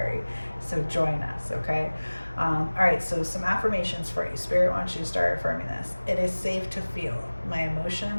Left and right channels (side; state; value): both; inverted; correlation -1.00